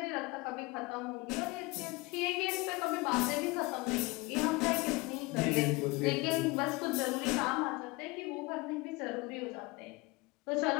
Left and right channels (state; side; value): quieter; right; 24.4 dB